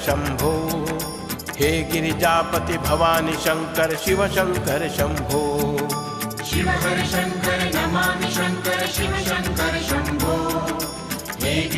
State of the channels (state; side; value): identical; both; correlation 1.00